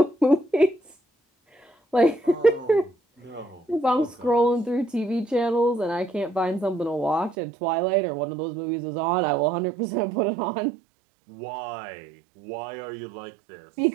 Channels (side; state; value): left; drops out; at 7.4 s